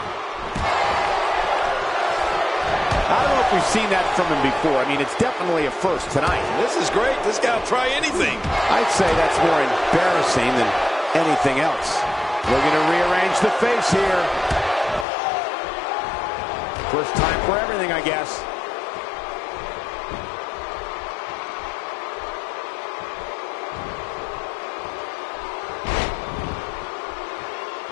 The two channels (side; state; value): right; drops out; at 15.1 s